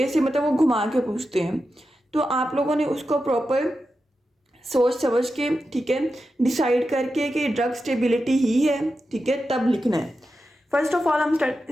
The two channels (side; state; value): both; normal; correlation 0.90